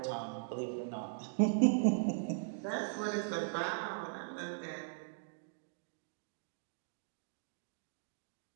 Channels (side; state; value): left; silent; digital silence